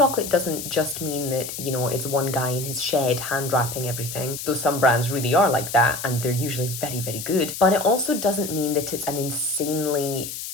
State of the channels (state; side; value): noise; left; hiss, 8 dB below the sound